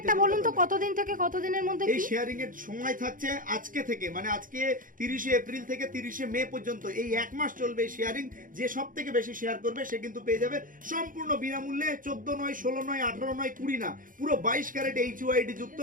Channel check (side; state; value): left; late; 0.39 ms